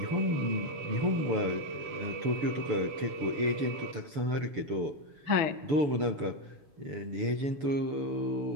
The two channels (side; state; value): left; late; 6.9 ms